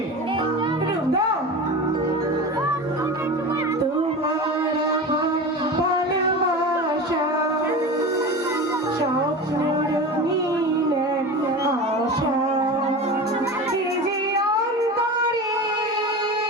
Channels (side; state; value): both; normal; correlation 0.29